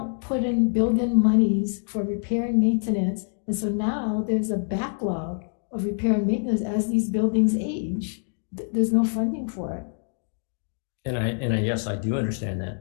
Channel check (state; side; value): silent; right; digital silence